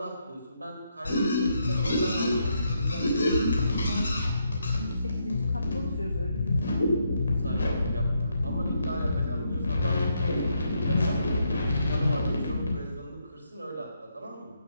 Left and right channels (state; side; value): inverted; both; correlation -0.78